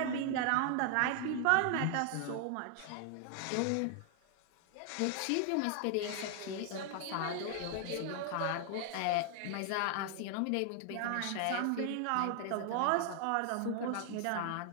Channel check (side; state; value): both; different; correlation 0.00